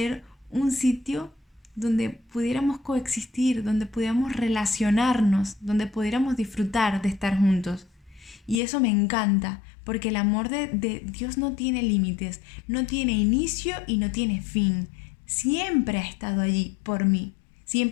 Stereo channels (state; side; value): drops out; right; at 8.6 s